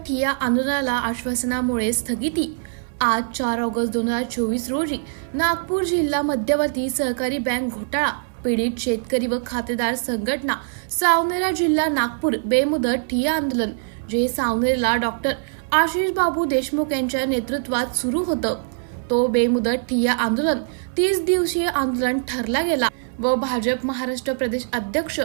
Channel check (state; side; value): silent; left; 64 dB below the other